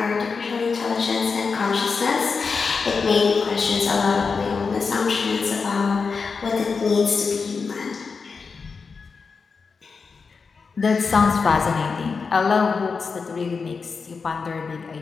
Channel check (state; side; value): quieter; right; 5.0 dB